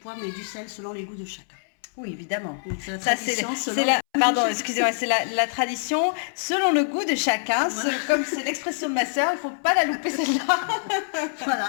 mais du sel selon les goûts de chacun. Oui, évidemment. C'est la tradition c'est la tradition selon le goût de chacun. Voilà. Comme c'est l'expression de ma sœur, il ne faut pas la louper celle-là.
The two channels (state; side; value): silent; right; 62 dB below the other